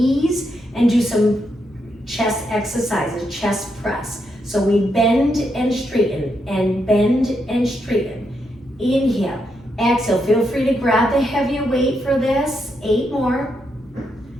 and do some chest exercises, chest press. So we bend and straighten and bend and straighten. Inhale, exhale. Feel free to grab the heavier weight for this. 8 more.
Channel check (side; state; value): both; normal; correlation 0.81